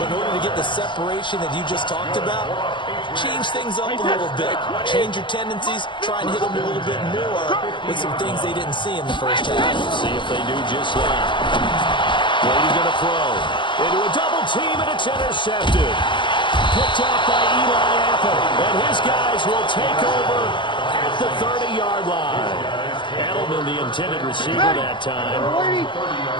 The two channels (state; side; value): late; right; 0.23 ms